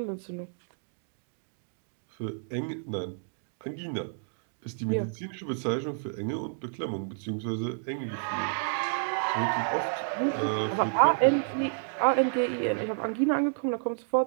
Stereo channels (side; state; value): left; silent; digital silence